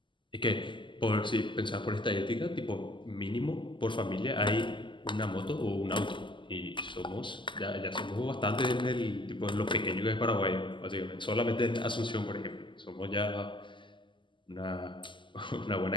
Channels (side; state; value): right; late; 0.24 ms